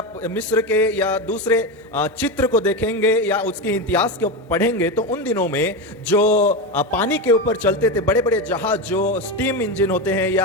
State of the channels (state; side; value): normal; both; correlation 0.16